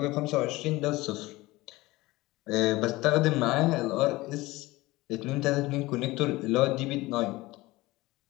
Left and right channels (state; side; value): quieter; right; 19.9 dB